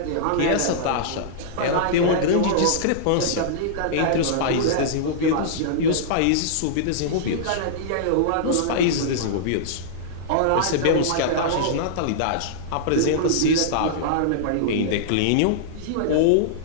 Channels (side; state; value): both; different; correlation -0.02